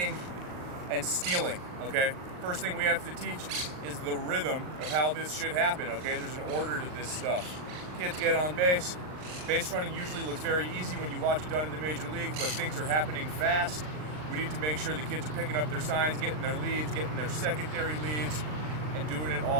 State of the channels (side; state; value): left; late; 39 ms